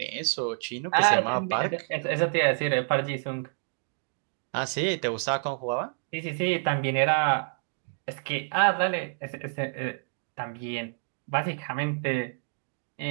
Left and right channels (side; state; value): left; silent; digital silence